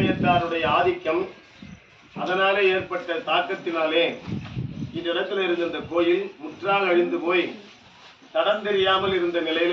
ஆதிக்கம், அதனாலே ஏற்பட்ட தாக்கத்தினாலே இந்த இடத்துல இருந்த இந்த கோயில் முற்றாக அழிந்து போய் தடம் தெரியாமல் இருந்த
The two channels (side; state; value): both; identical; correlation 1.00